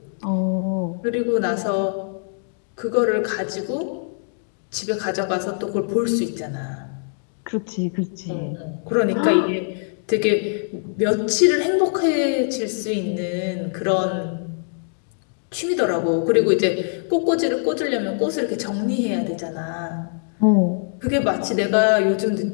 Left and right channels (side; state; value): right; silent; 64 dB below the other